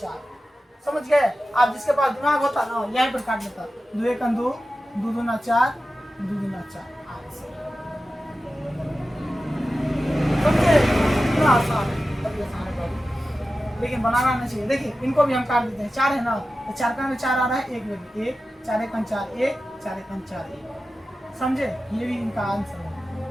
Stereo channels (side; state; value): both; normal; correlation 0.93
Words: समझ गए। आप जिसके पास दिमाग होता ना यहीं पर काट लेता, 2 1 2, 2 दूना 4, 2 दूना 4, समझे, इतना आसान है, बड़ी आसान है बाबू, लेकिन बनाना नहीं चाहिए। देखिए इनको भी हम काट देते हैं, 4 है ना, तो 4 का में 4 आ रहा है, 1 में 1, 4 1 4 1, 4 1 4 1, समझे, ये भी इनका आंसर है,